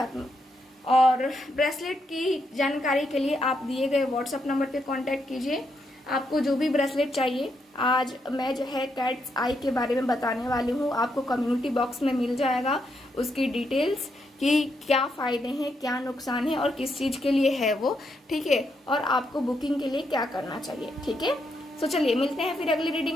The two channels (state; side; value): normal; both; correlation 0.79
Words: और ब्रेसलेट की जानकारी के लिए आप दिए गए व्हाट्सएप नंबर पे कांटेक्ट कीजिए। आपको जो भी ब्रेसलेट चाहिए, आज मैं जो है कैट्स आई के बारे में बताने वाली हूँ, आपको कम्युनिटी बॉक्स में मिल जाएगा उसकी डिटेल्स कि क्या फ़ायदे हैं, क्या नुकसान है और किस चीज़ के लिए है वो, ठीक है, और आपको बुकिंग के लिए क्या करना चाहिए, ठीक है। सो चलिए मिलते हैं फिर अगली